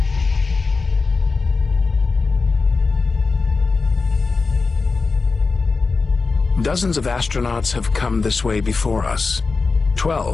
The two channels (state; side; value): quieter; right; 4.3 dB